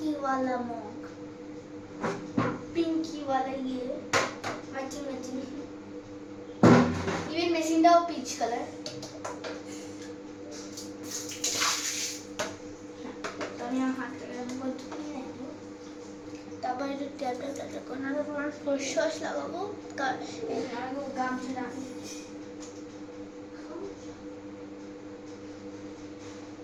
वाला मग, पिंकी वाला ये मैचिंग मैचिंग, इवन मेसिंडाও पीच कलर। तो আমি হাত থেকে আমি ধুয়ে নেব, তারপরে একটু ট্যাপটা করে তোমার ফেস ওয়াশ লাগাবো। এই লাগাবো গামছা রাখি।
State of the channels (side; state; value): both; identical; correlation 1.00